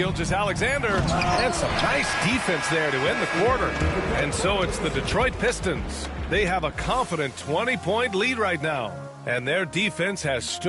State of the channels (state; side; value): identical; both; correlation 1.00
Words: and some nice defense there to end the quarter. And so it's the Detroit Pistons. They have a confident 20-point lead right now, and their defense has